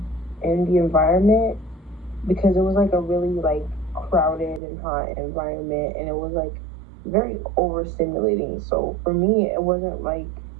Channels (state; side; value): drops out; left; at 4.6 s